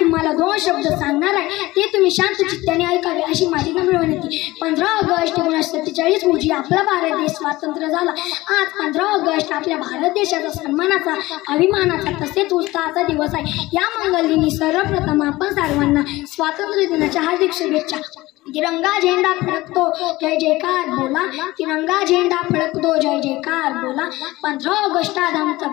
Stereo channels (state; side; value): quieter; right; 19.0 dB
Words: 2 शब्द सांगणार आहे, ते तुम्ही शांत चित्ताने ऐकावे अशी माझी नम्र विनंती। 15 ऑगस्ट 1947 रोजी आपला भारत देश स्वतंत्र झाला। आज 15 ऑगस्ट आपल्या भारत देशाचा सन्मानाचा, अभिमानाचा तसेच उत्साहाचा दिवस आहे। या मंगल दिनी सर्वप्रथम आपण सर्वांना स्वातंत्र्य दिनाच्या हार्दिक शुभेच्छा। तिरंगा झेंडा फडकतो जय जयकार बोला, तिरंगा झेंडा फडकतो जय जयकार बोला। 15 ऑगस्ट आज आमचा